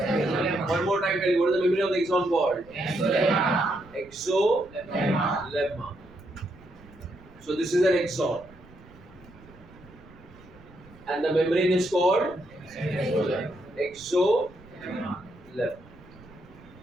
more time, tell you what is the membrane of the axon called? Exolemma. So this is an axon, and the membrane is called exolemma.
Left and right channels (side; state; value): right; noise; rumble, 23 dB below the sound